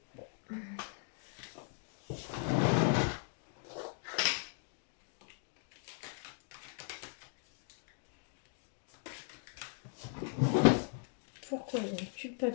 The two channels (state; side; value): silent; right; 52 dB below the other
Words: Pourquoi il y a une